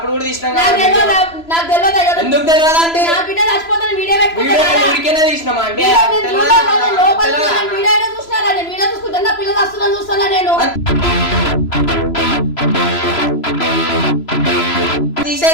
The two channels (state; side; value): late; right; 3.0 ms